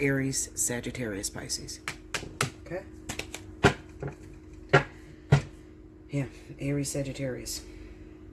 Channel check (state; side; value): identical; both; correlation 1.00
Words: Sagittarius, Pisces. Okay? Yeah, Aries, Sagittarius.